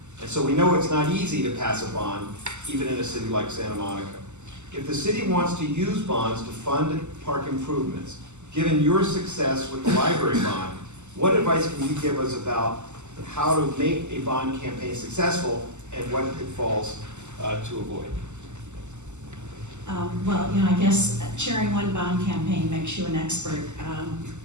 And so we know it's not easy to pass a bond, even in a city like Santa Monica. If the city wants to use bonds to fund park improvements, given your success with the library bond, what advice can you give us about how to make a bond campaign successful and what pitfalls to avoid? Well, I guess chairing one bond campaign makes you an expert.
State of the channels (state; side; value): late; left; 0.83 ms